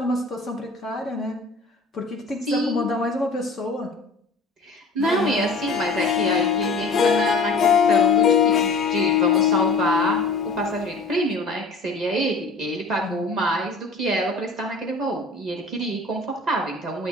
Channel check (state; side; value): quieter; right; 3.4 dB